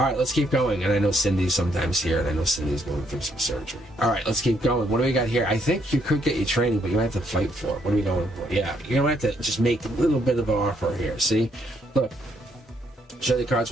right, let's keep going. And I know Cindy's sometimes here, and I know Cindy's going through some surgery. All right, let's keep going. What do we got here? I think you could get your training, but you might have to fight for it. What are we going for? Yeah, you're going to have to just make a little bit of an offer here. See? Look, show the cards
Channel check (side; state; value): both; normal; correlation 0.72